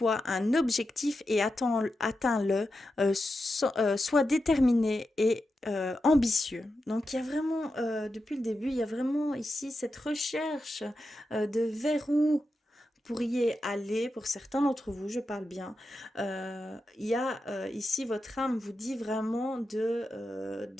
un objectif et atteins-le, sois déterminé et ambitieux. Donc il y a vraiment, depuis le début, il y a vraiment ici cette recherche de vers où pourriez aller, pour certains d'entre vous, je parle bien. Il y a ici, votre âme vous dit vraiment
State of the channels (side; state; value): both; normal; correlation 0.89